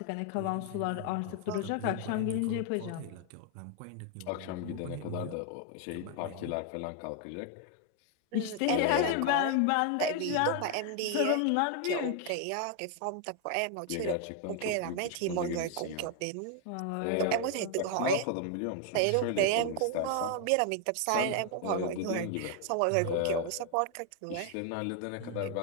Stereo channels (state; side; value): different; both; correlation 0.00